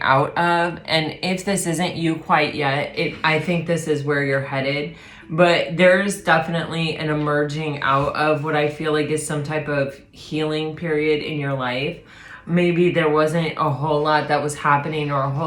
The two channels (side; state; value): both; identical; correlation 1.00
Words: out of, and if this isn't you quite yet, I think this is where you're headed, but there's definitely an emerging out of what I feel like is some type of healing period in your life. Maybe there wasn't a whole lot that was happening or a